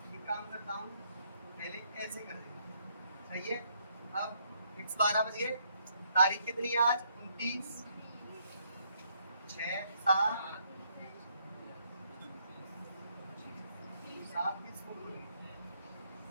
एक काम करता हूँ, पहले ऐसे कर देगा, सही है। अब फिक्स 12 बज गए, तारीख कितनी है आज? 29 6 7 7 किस को बोली?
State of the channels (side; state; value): both; inverted; correlation -0.71